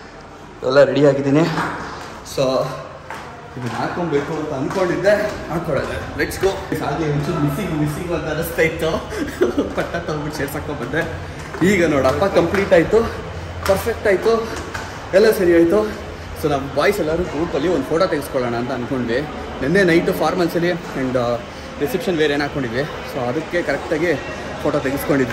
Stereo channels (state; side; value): identical; both; correlation 1.00